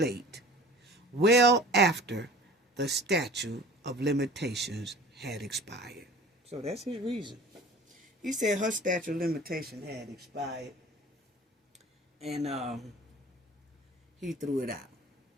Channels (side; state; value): both; normal; correlation 0.43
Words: well after the statute of limitations had expired. So that's his reason. He said her statute of limitation had expired, and he threw it out.